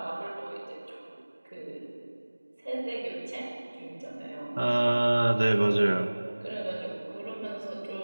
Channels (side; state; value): both; inverted; correlation -1.00